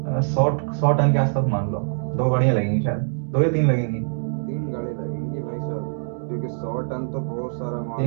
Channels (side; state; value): left; silent; digital silence